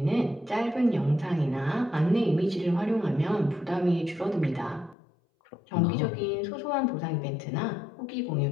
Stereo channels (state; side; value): drops out; right; at 5.0 s